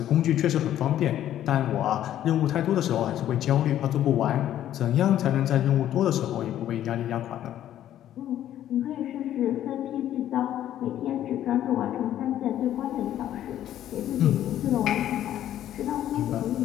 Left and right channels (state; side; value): quieter; right; 11.8 dB